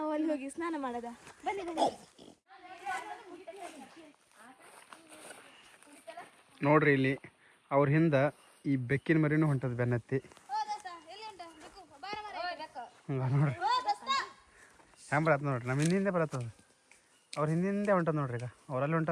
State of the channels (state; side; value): identical; both; correlation 1.00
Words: ಅಲ್ಲಿ ಹೋಗಿ ಸ್ನಾನ ಮಾಡೋದ ಬನ್ನಿ ಬನ್ನಿ ನೋಡ್ರಿ ಇಲ್ಲಿ ಅವ್ರ ಹಿಂದ ಈ ಬೆಕ್ಕಿನ ಮರಿನೂ ಹೊಂಟದ ಬೆನ್ನತ್ತಿ ನೋಡ್ರಿ ಹ್ಯಾಂಗ ಬರತ್ತ ನೋಡ್ರಿ ನಮ್ಮ ಹಿಂದೆ ಬರತ್ತದ ಅವ್ರ ಹಿಂದೆ ಹೊಂಟದ ನೋಡ್ರಿ ಈಗ ಅವ್ರಲ್ಲಿ